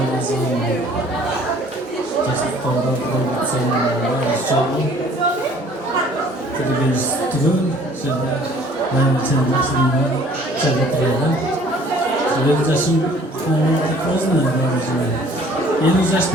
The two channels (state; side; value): normal; both; correlation 0.54